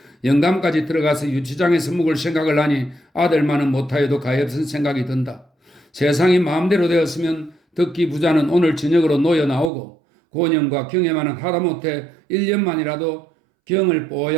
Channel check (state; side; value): drops out; left; at 9.7 s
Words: 영감까지 들어가서 유치장에서 묵을 생각을 하니 아들만은 못하여도 가엾은 생각이 든다. 세상이 마음대로 되었으면 듣기 부자는 오늘 저녁으로 놓여 나오고 고년과 경애만은 하다못해 1년만이라도 경을